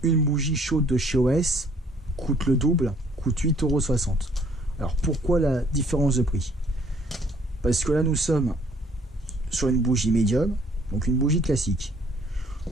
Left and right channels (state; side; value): normal; both; correlation 0.61